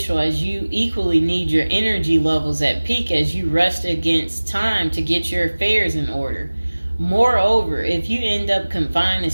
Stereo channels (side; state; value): both; inverted; correlation -1.00